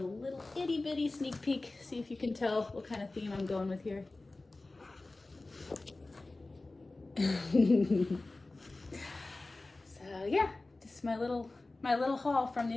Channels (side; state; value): right; quieter; 3.1 dB